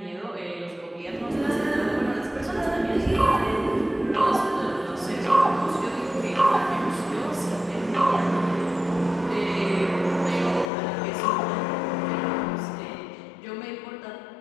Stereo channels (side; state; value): right; drops out; at 10.7 s